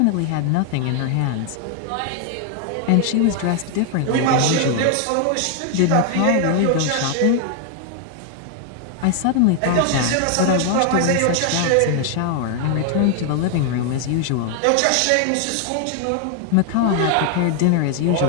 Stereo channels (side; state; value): both; different; correlation 0.00